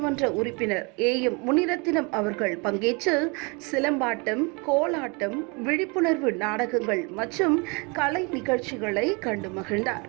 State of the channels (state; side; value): quieter; left; 30.5 dB